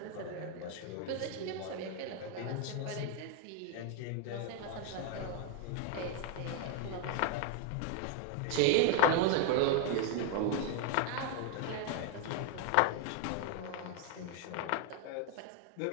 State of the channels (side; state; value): both; different; correlation 0.00